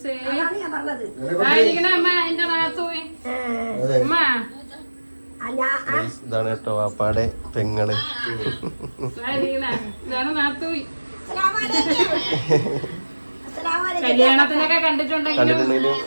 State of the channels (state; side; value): inverted; both; correlation -1.00